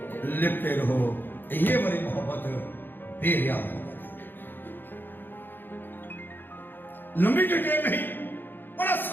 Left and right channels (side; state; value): right; late; 0.096 ms